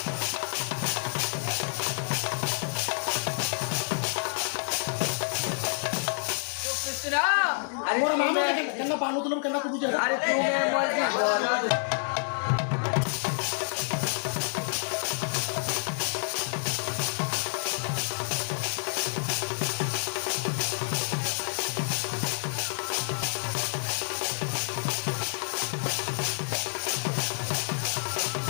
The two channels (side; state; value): right; silent; digital silence